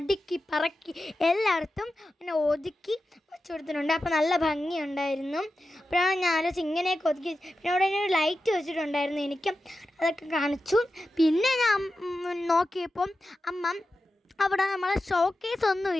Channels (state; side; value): normal; both; correlation 0.92